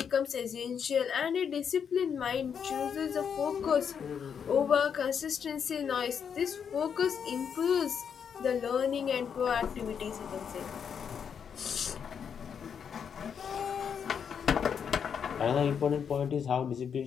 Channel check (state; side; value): quieter; right; 7.3 dB